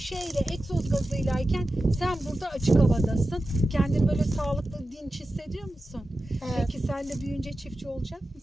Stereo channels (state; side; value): normal; both; correlation 0.93